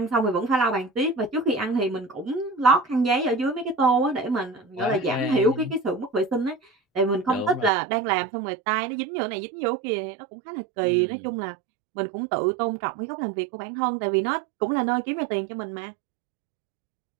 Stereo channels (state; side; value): drops out; left; at 7.7 s